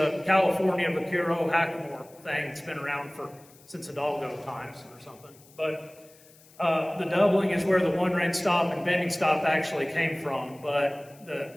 California Vaquero Hackamore thing that's been around since Hidalgo times or something. But the doubling is where the one rein stop and bending stop actually came from, but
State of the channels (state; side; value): noise; left; hiss, 26 dB below the sound